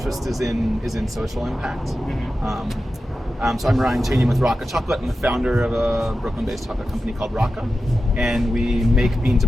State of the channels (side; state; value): both; normal; correlation 0.93